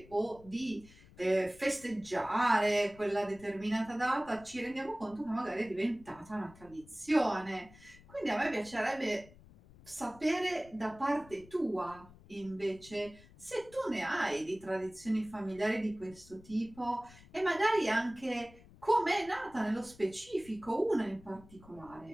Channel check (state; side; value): noise; left; rumble, 22 dB below the sound